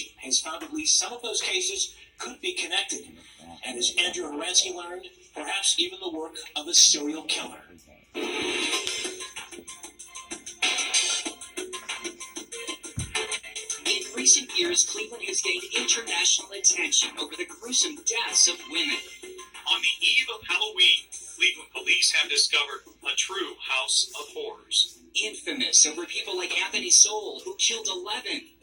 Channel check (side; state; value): both; identical; correlation 1.00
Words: has found at least some of those cases could be connected. And as Andrew Horansky learned, perhaps even the work of a serial killer. In recent years, Cleveland has gained international attention over the gruesome deaths of women. On the eve of Halloween, Cleveland police have discovered a true house of horrors. Infamous over people like Anthony Soule, who killed 11,